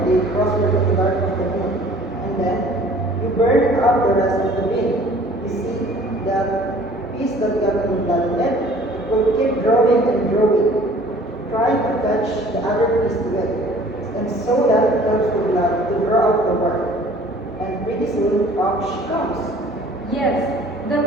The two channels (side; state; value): both; normal; correlation 0.51